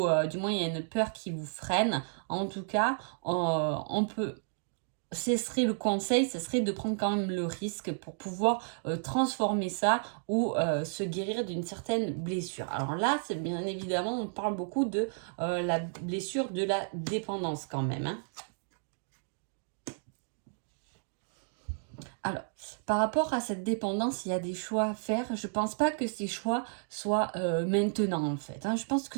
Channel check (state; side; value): silent; left; digital silence